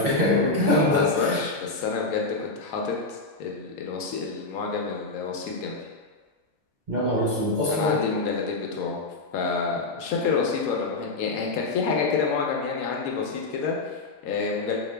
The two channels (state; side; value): quieter; right; 3.3 dB